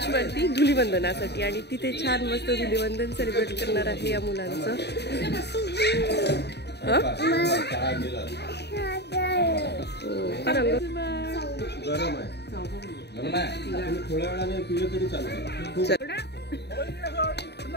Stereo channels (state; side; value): late; right; 0.49 ms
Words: धुलीवंदनासाठी. आणि तिथे छान मस्त धुलीवंदन सेलिब्रेट करणार आहे या मुलांचं. गरम आहे थोड्या वेळाने पिलं तरी चालतं.